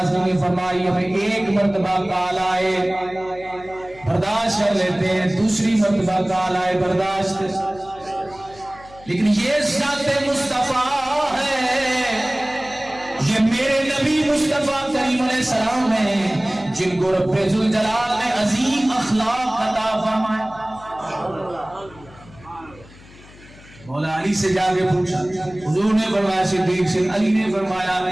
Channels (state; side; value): noise; left; hum, 22 dB below the sound